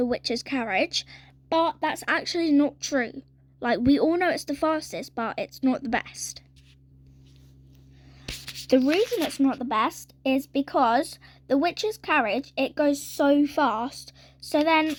witch's carriage. But that's actually not true. Like, we all know it's the fastest, but it's not the best. The reason it's not the best is because the witch's carriage, it goes so fast. So then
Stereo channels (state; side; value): identical; both; correlation 1.00